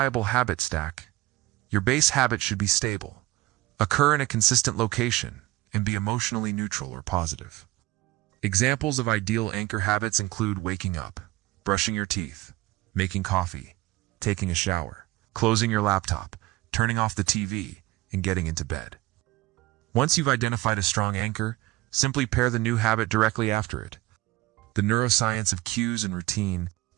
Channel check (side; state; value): left; quieter; 19.5 dB